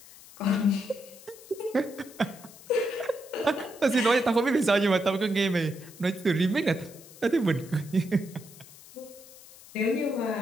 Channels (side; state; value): left; noise; hiss, 20 dB below the sound